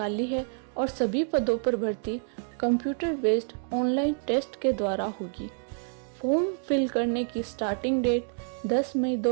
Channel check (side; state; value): left; silent; 59 dB below the other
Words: है और सभी पदों पर भर्ती कंप्यूटर बेस्ड ऑनलाइन टेस्ट के द्वारा होगी। फॉर्म फिल करने की स्टार्टिंग डेट 10 मई